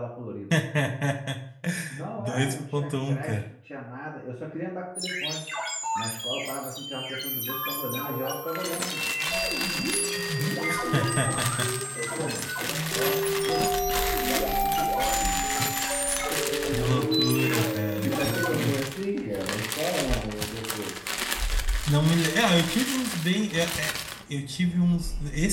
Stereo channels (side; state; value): both; identical; correlation 1.00